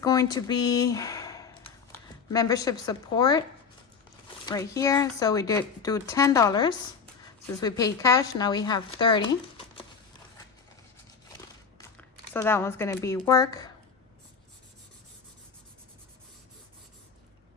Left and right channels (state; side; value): quieter; right; 5.8 dB